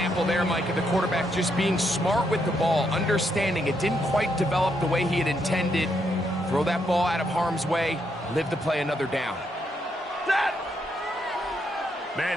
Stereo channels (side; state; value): both; normal; correlation 0.77